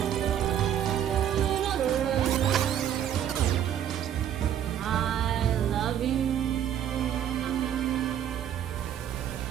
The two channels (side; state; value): left; quieter; 10.0 dB